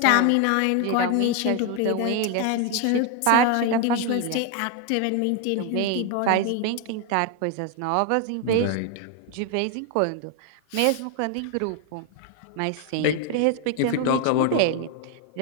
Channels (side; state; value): both; different; correlation 0.01